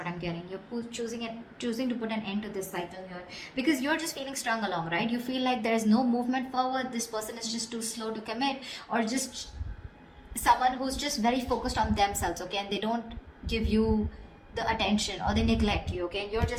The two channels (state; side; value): identical; both; correlation 1.00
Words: I'm getting. You're choosing to put an end to this cycle here because you're just feeling strung along, right? You feel like there's no movement forward. This person is just too slow to commit, or just someone who's just very focused on themselves, okay? And they don't give you the attention, or they neglect you, okay? And you're